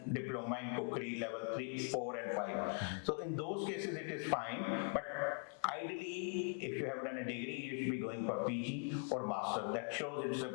diploma in cookery level 3, 4 and 5. So in those cases it is fine, but ideally if you have done a degree, you should be going for PG or master. That shows it's a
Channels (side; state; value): right; quieter; 37.8 dB